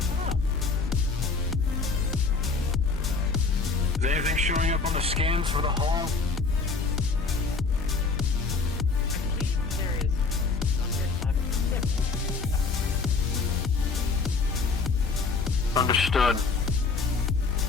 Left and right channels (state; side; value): quieter; right; 4.4 dB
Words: Is anything showing up on the scans for the hull? Understood.